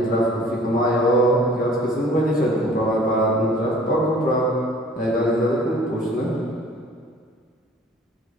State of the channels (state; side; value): normal; both; correlation 0.51